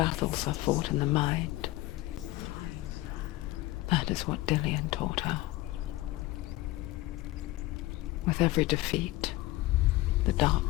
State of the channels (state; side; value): quieter; right; 18.1 dB